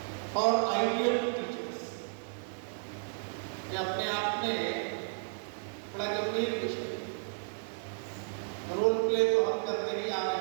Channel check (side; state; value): left; silent; digital silence